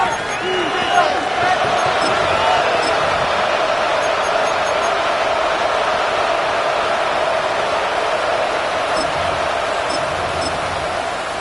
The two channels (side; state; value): both; identical; correlation 1.00